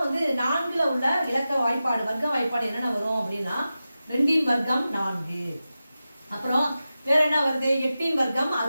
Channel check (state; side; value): inverted; both; correlation -0.93